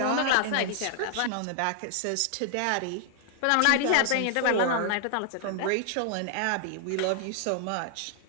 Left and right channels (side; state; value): both; different; correlation 0.00